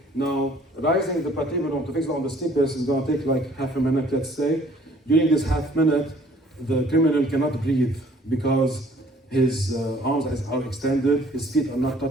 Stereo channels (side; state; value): both; normal; correlation 0.57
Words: now rising the patibulum to fix it on the stipes is gonna take like half a minute, let's say. During this half minute, the criminal cannot breathe because his arms are extended, his feet are not